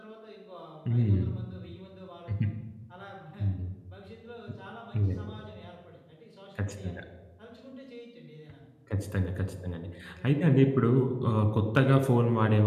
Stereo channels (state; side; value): identical; both; correlation 1.00